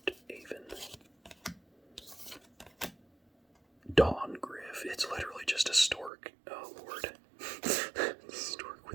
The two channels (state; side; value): drops out; left; at 6.1 s